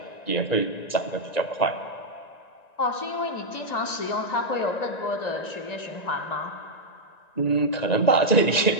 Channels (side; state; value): right; late; 1.9 ms